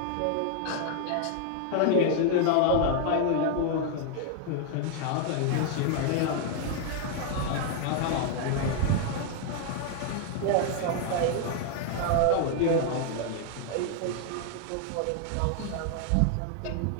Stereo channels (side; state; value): both; different; correlation 0.00